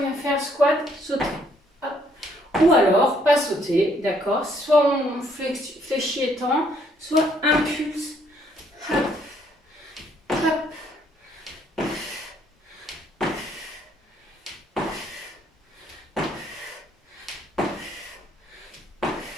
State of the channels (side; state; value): both; normal; correlation 0.67